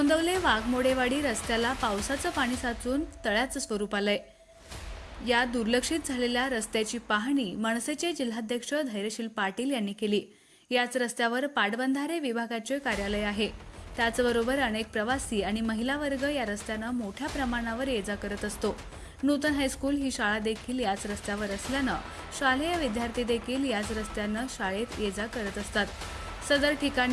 वाघमोडेवाडी रस्त्याला पावसाचं पाणी साचून तळ्याचं स्वरूप आलंय। या दुर्लक्षित झालेल्या रस्त्याची पाहणी मनसेचे जिल्हाध्यक्ष धैर्यशील पाटील यांनी केली। याच रस्त्यावर पाटबंधारे विभागाचे कार्यालय आहे। त्याचबरोबर अनेक प्रवासी आणि महिला वर्ग या रस्त्यानं मोठ्या प्रमाणावर ये-जा करत असतो। नूतन हायस्कूल ही शाळा देखील याच रस्त्यावर असल्यानं शालेय विद्यार्थी देखील याच रस्त्यानं शाळेत ये-जा करत असतात। सदर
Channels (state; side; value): identical; both; correlation 1.00